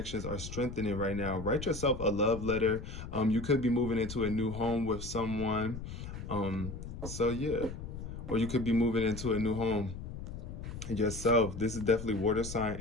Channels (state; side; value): noise; left; rumble, 9 dB below the sound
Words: are strengthening right now. Write yourself a love letter. You could be moving into a new home with someone. Or you could be moving into a new home yourself. This is definitely water sign